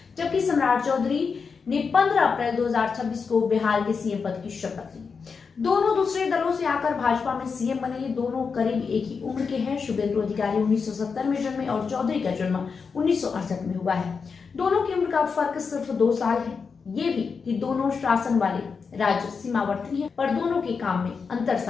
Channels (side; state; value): right; quieter; 5.4 dB